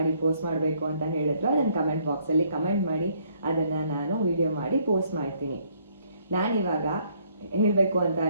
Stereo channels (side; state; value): both; inverted; correlation -0.67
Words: ಪೋಸ್ಟ್ ಮಾಡಬೇಕು ಅಂತ ಹೇಳಿದ್ರು ಅದನ್ನು ಕಮೆಂಟ್ ಬಾಕ್ಸಲ್ಲಿ ಕಮೆಂಟ್ ಮಾಡಿ, ಅದನ್ನು ನಾನು ವಿಡಿಯೋ ಮಾಡಿ ಪೋಸ್ಟ್ ಮಾಡ್ತೀನಿ. ನಾನಿವಾಗ ಹೇಳಬೇಕು ಅಂತ